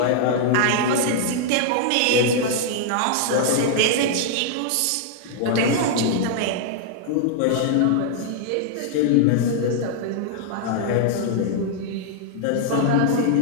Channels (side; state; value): both; different; correlation -0.01